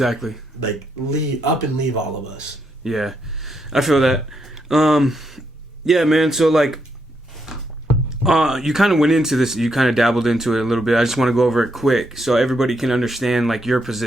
like leave all of us. Yeah, I feel that. Yeah, man. So like, you kind of went into this. You kind of dabbled into it a little bit. I just want to go over it quick so everybody can understand like your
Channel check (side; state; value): both; normal; correlation 0.78